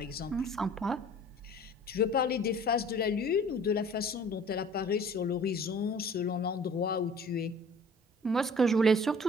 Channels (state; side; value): normal; both; correlation 0.48